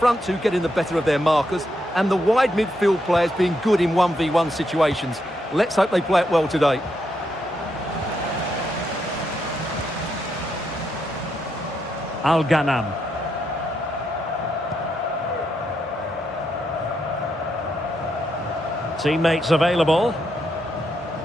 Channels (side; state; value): both; normal; correlation 0.80